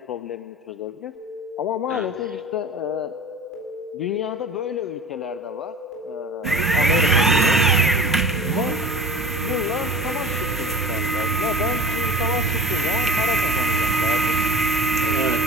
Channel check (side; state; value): both; normal; correlation 0.39